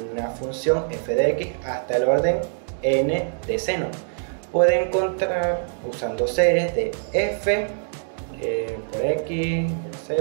función f de x hasta el orden n de seno. Puede encontrar usando series de f por x,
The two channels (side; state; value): left; silent; digital silence